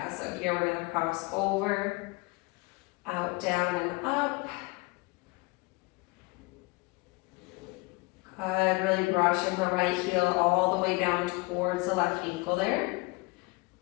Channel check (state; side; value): quieter; right; 25.6 dB